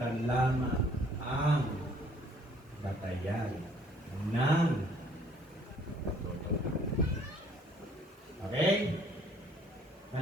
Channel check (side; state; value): both; normal; correlation 0.60